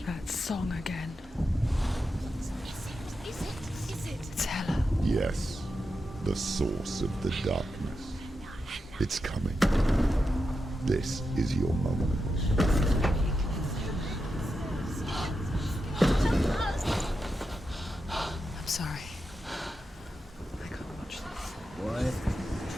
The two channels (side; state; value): both; normal; correlation 0.88